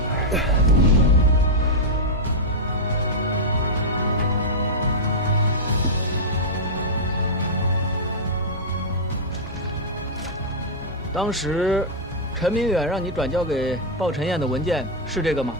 当时，陈明远让你转交给鲍晨燕的文件是这个吗？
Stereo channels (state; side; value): normal; both; correlation -0.06